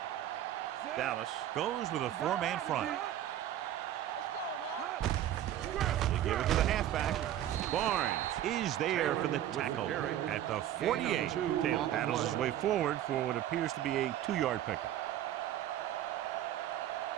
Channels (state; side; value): quieter; left; 12.0 dB